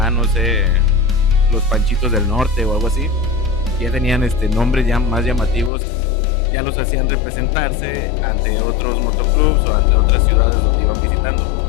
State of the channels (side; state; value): right; drops out; at 5.7 s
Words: no sé, los Panchitos del Norte o algo así, ya tenían nombres ya más llamativos, ya los hacían representarse ante otros motoclubs o ante otras ciudades donde iban visitando.